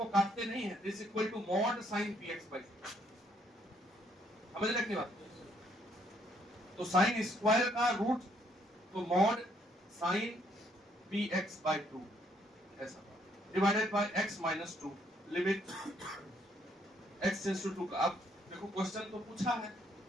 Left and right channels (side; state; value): both; normal; correlation 0.69